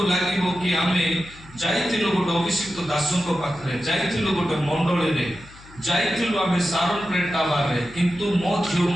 लागिबो कि आमे जाइथिलो गोटे अभिषिक्त दासंक पाखरे जाइथिलो गोटे मंडली रे जाइथिलो आमे सारण प्रेटावा रे किंतु मो झियो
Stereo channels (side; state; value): left; noise; hum, 21 dB below the sound